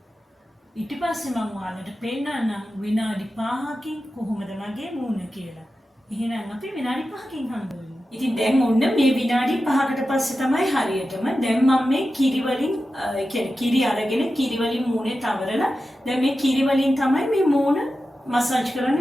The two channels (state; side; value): normal; both; correlation 0.92